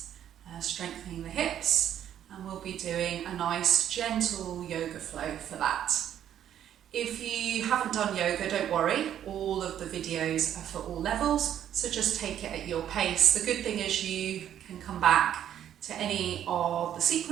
strengthening the hips, and we'll be doing a nice gentle yoga flow for that. If you haven't done yoga, don't worry, all of the videos are for all levels, so just take it at your pace. The good thing is you can come back to any of the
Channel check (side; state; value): left; quieter; 10.4 dB